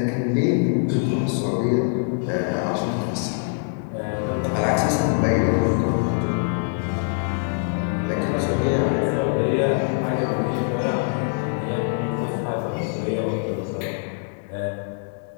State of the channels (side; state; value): right; silent; 63 dB below the other